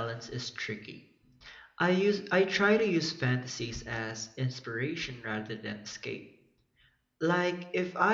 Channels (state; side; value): identical; both; correlation 1.00